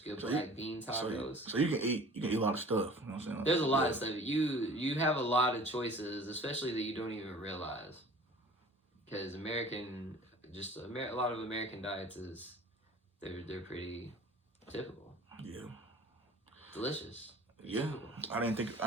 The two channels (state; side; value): normal; both; correlation 0.46